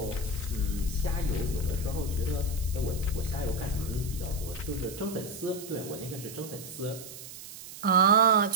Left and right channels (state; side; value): noise; right; hiss, 13 dB below the sound